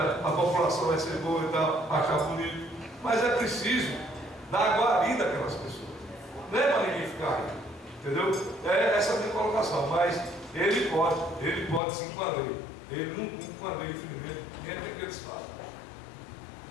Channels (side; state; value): right; drops out; at 11.8 s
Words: a população vai ser boa e tal, achar bonito. Mas é preciso dar guarida àquelas pessoas. Não é para ninguém ficar aí. Entendeu? Essa é a minha colocação. Mas ele pode sim com a lei. Ele não cumpre com a lei, infelizmente, nem é que eles falam.